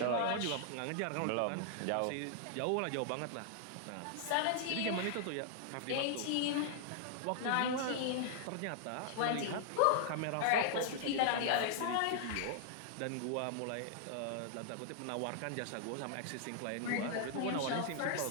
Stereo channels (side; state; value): both; different; correlation -0.01